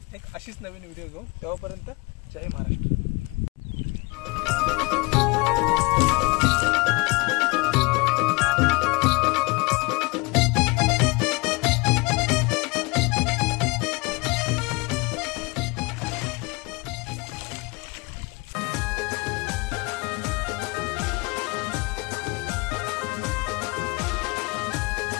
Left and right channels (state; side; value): quieter; right; 27.2 dB